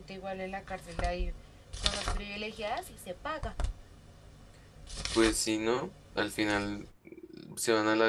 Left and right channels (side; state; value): both; identical; correlation 1.00